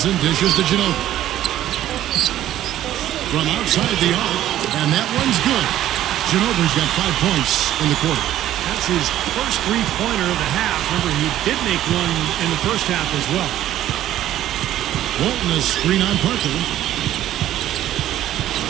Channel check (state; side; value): quieter; left; 12.8 dB